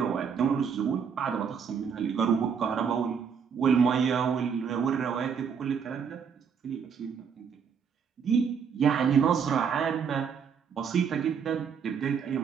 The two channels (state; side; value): quieter; left; 6.8 dB